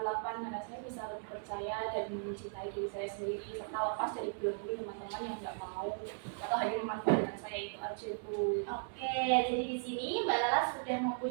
8 karena saya bisa lebih percaya dan mencintai diri saya sendiri serta lepas dari belenggu teman-teman yang nggak mau atau hanya memanfaatkan saya, itu aja Bu. Oke, jadi di sini Mbak Lala sudah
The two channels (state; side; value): silent; left; digital silence